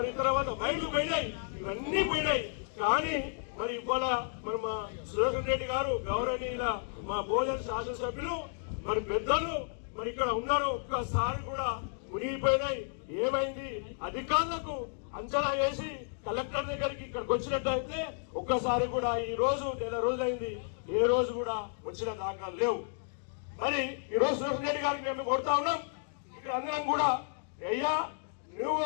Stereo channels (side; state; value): right; silent; digital silence